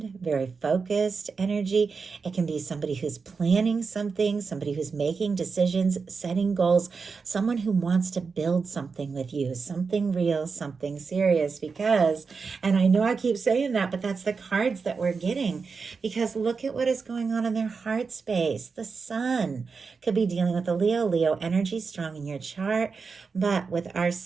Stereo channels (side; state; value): left; quieter; 5.0 dB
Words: very focused energy. It can be somebody who's planning something, somebody who's making decisions, setting goals, someone who wants to build something with you, something real, something serious, because, and I know I keep saying that, but that's the cards that we're getting, because look at what is going on in their heart space. The Sun could be dealing with the Leo energy strong in your chart, but with our